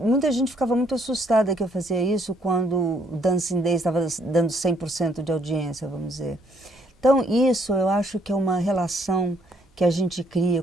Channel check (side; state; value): both; normal; correlation 0.68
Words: gente ficava muito assustada que eu fazia isso quando o Dancing Days estava dando 100% de audiência, vamos dizer. Então isso eu acho que é uma relação que a gente cria